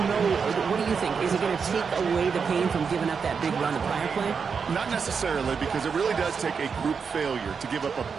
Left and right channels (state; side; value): quieter; left; 5.9 dB